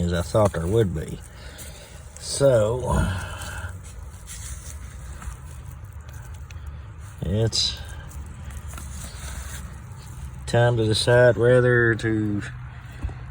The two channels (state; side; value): identical; both; correlation 1.00